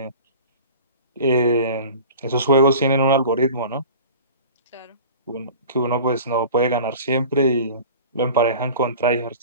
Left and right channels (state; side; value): inverted; both; correlation -0.40